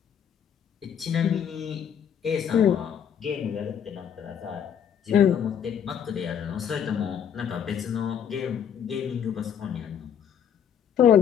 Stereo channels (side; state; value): right; quieter; 8.6 dB